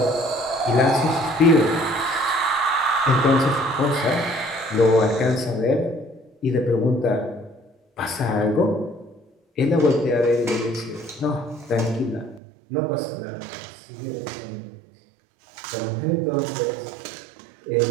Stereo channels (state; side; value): drops out; left; at 12.4 s